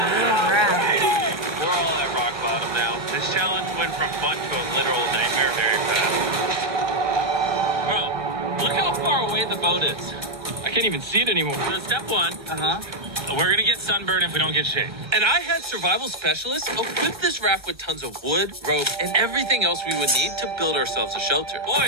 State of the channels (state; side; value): late; left; 1.1 ms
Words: all at rock bottom now. This challenge went from fun to a literal nightmare very fast. Bro, look how far away the boat is. I can't even see it anymore. So step 1. We're going to get sunburned if we don't get shade. And I had survival specialists equip this raft with tons of wood, rope, and everything else we would need to build ourselves a shelter.